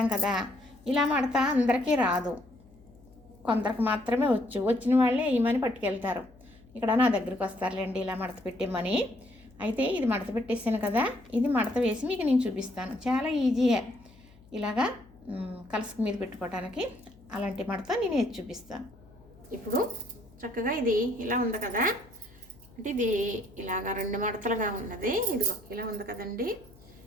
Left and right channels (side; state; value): left; noise; hum, 26 dB below the sound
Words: కదా. ఇలా మడత అందరికీ రాదు, కొందరికి మాత్రమే వచ్చిన వాళ్ళే వేయమని పట్టుకెళ్తారు. ఇక్కడ నా దగ్గరికి వస్తారులేండి ఇలా మడత పెట్టేమని. అయితే ఇది మడత పెట్టేసాను కదా, ఇది మడత వేసి మీకు నేను చూపిస్తాను. చాలా ఈజీయే ఇలాగా కలసక మీద పెట్టుకోవడానికి. అలాంటి మడత నేను వేసి చూపిస్తాను. ఇప్పుడు చక్కగా ఇది ఇలా ఉంది కదా, అంటే ఇది ఇలాగా 2 మడతలుగా ఉన్నది. ఇదిగో ఇలా ఉంది కదండి,